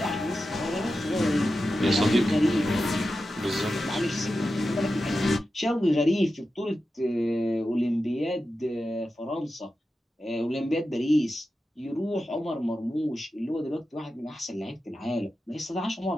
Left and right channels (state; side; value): normal; both; correlation 0.91